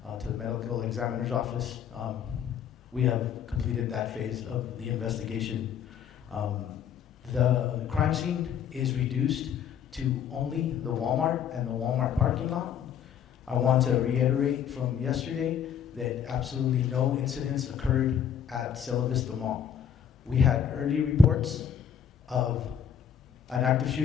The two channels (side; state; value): right; quieter; 8.4 dB